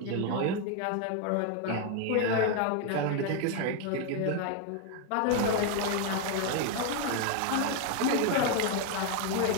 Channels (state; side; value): different; both; correlation 0.01